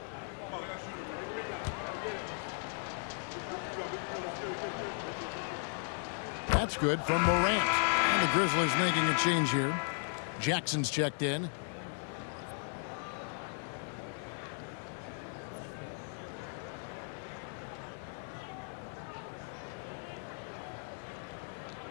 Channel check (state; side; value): silent; right; 54 dB below the other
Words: That's good from Morant. And the Grizzlies making a change here. Jackson's checked in.